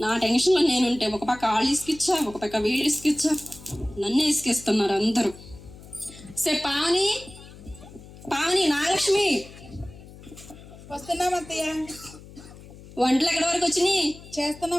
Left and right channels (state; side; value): noise; left; hum, 18 dB below the sound